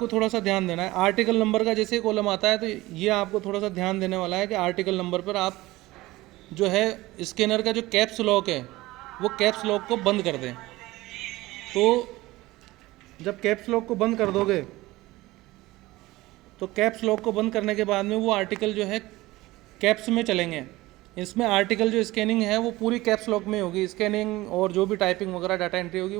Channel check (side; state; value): left; quieter; 18.9 dB